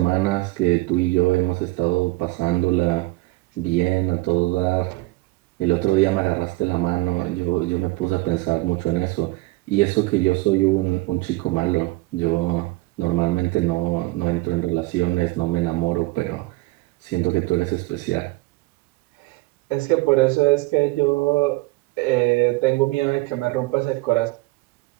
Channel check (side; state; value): left; quieter; 21.5 dB